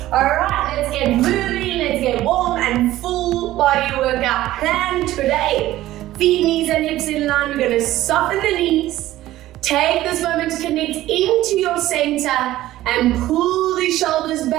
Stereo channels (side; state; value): left; quieter; 15.2 dB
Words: Alright, let's get moving, let's get warm and full body workout plan today. Feet, knees and hips in line. We're going to soften the knees. Take this moment to connect into your center and pull the shoulders